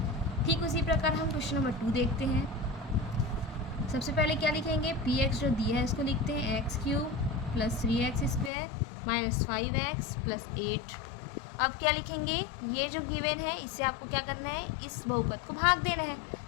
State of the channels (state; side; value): drops out; right; at 8.5 s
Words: ठीक उसी प्रकार हम क्वेश्चन नंबर 2 देखते हैं। सबसे पहले क्या लिखेंगे, px जो दिया है इसको लिखते हैं x cube plus 3x² minus 5x plus 8। अब क्या लिखेंगे, ये जो गिवन है इससे आपको क्या करना है, इस बहुपद को भाग देना है।